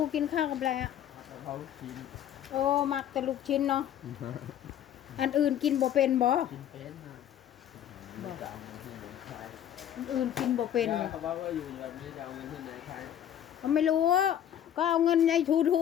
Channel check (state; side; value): quieter; right; 10.4 dB